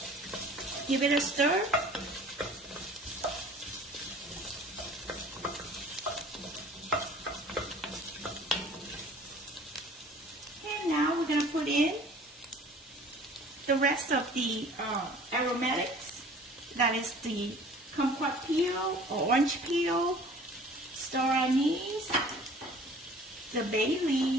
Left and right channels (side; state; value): both; normal; correlation 0.48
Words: Give it a stir. And now we're going to put in the rest of the aromatics. That is the kumquat peel or orange peel, star anise, the bay